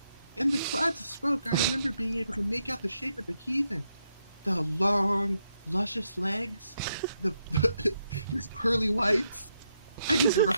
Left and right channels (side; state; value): both; inverted; correlation -0.81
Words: In the clouds of smoke, I remember being able to make out the shape of the heathen. The long, luscious legs, his pearly whites, and just a